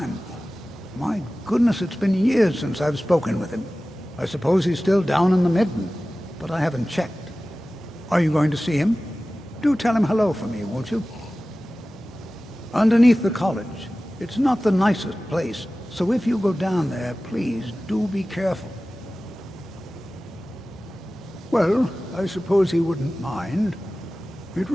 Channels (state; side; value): normal; both; correlation 0.96